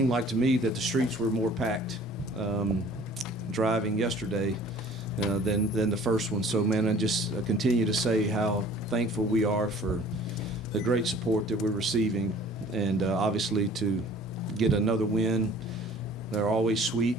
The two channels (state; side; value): normal; both; correlation 0.50